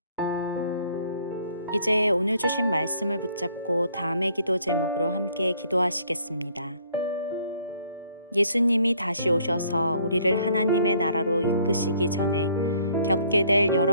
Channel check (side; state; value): both; inverted; correlation -0.62